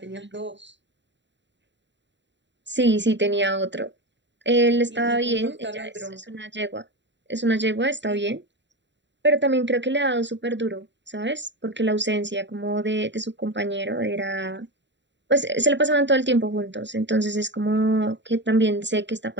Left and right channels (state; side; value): late; left; 0.52 ms